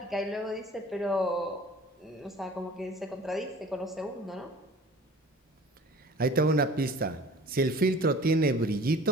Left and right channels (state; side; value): normal; both; correlation 0.46